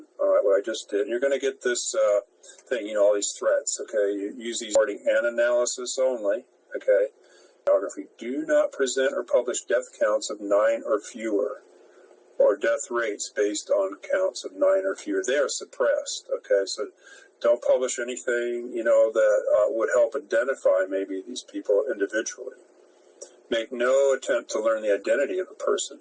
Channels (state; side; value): identical; both; correlation 1.00